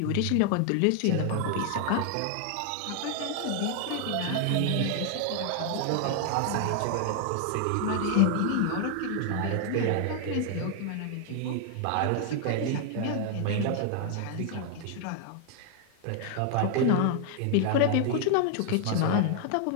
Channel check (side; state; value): both; different; correlation 0.00